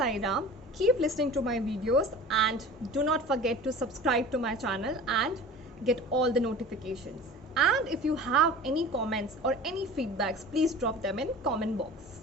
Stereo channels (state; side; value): normal; both; correlation 0.39